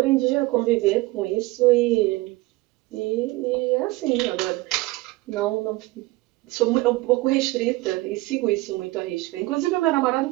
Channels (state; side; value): quieter; left; 20.5 dB